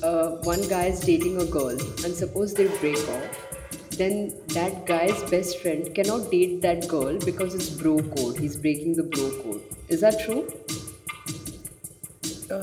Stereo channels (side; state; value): both; identical; correlation 1.00